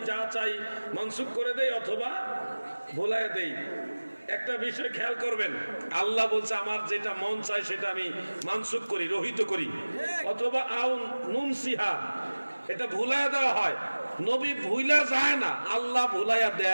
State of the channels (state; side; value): inverted; both; correlation -1.00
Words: যা চাই মনসুখ করে দেই অথবা ভুলায় দেই। একটা বিষয় খেয়াল করবেন, আল্লাহ বলছে আমার যেটা মন চাই সেটা আমি মানসুখ করি, রহিত করি, অথবা আও নুনসিহা, এটা ভুলায় দেওয়া হয়। নবী ভুলা যায় না, আল্লাহ ভুলাইয়া